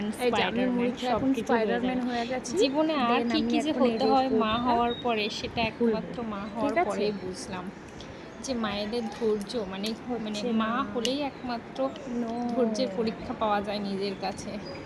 এই যে আমি স্পাইডারম্যান মুড়ি খেয়ে সব এখন কিছু হয়ে স্পাইডারম্যান যাবে। হয়ে গেছি। জীবনে আর দেন কি আমি কি যে এখন এই হতে হয় মা রেসিপিটা হওয়ার পরে, সেটা খুলবো। একমাত্র মা ঠিক হওয়ার আছে? পরেই বুঝলাম যে মায়েদের ধৈর্য মানে মানে হচ্ছে না। মা হলেই একমাত্র নো। ধৈর্যের পরীক্ষা পাওয়া যায় নিজের কাছে।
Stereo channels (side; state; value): both; identical; correlation 1.00